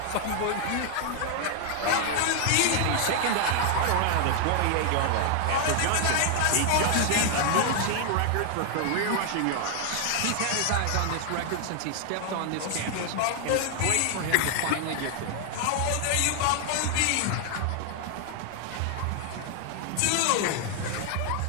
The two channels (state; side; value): different; both; correlation 0.00